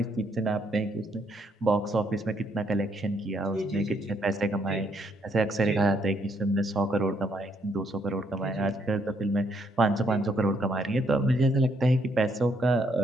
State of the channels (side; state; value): both; normal; correlation 0.72